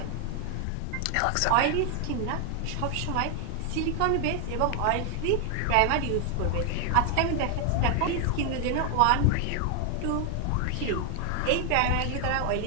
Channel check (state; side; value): different; both; correlation 0.00